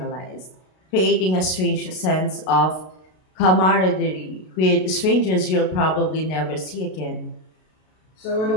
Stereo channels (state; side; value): late; right; 32 ms